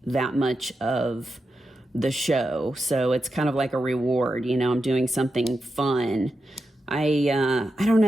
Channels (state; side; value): normal; both; correlation 0.89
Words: that much of the show. So it's kind of like a reward, you know, I'm doing something fun. I don't